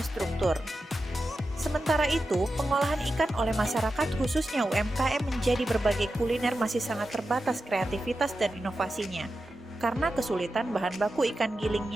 Sementara itu, pengolahan ikan oleh masyarakat khususnya UMKM menjadi berbagai kuliner masih sangat terbatas kreativitas dan inovasinya karena kesulitan bahan baku ikan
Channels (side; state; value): both; normal; correlation 0.91